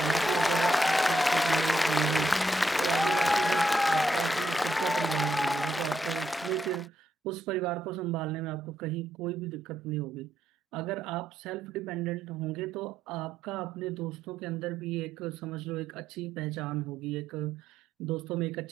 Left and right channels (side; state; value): both; normal; correlation 0.77